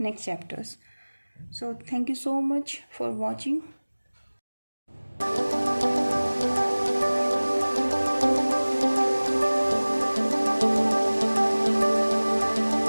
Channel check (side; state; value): both; inverted; correlation -1.00